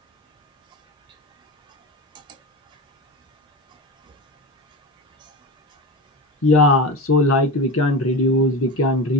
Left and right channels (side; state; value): both; normal; correlation 0.25